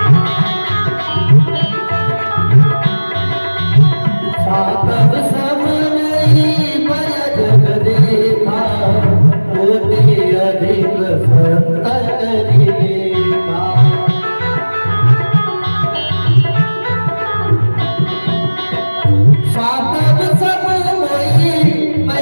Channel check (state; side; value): inverted; both; correlation -1.00